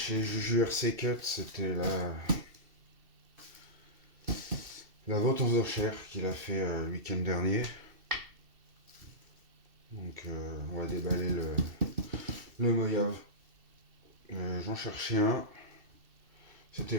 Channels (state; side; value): late; left; 2.7 ms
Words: Juju RC Cut, c'était la vente aux enchères qu'il a fait le week-end dernier. Donc on va déballer le Mojave. J'en cherchais un, c'était